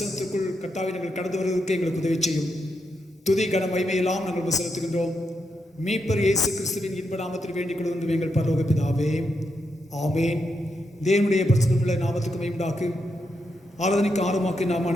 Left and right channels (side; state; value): both; normal; correlation 0.83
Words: கர்த்தாவை நாங்கள் கடந்து வருவதற்கு எங்களுக்கு உதவி செய்யும். துதி கன மகிமையெல்லாம் நாங்கள் செலுத்துகின்றோம். மீட்பர் இயேசு கிறிஸ்துவின் இன்ப நாமத்தில் வேண்டிக் கொள்வது எங்கள் பரலோக பிதாவே, ஆமேன். தேவனுடைய பிரசனமுள்ள நாமத்துக்கு மகிமையுண்டாக்கு ஆராதனைக்கு ஆர்வமாக்கி நாம்